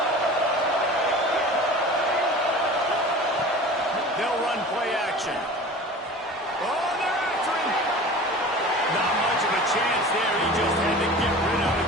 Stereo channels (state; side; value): normal; both; correlation 0.38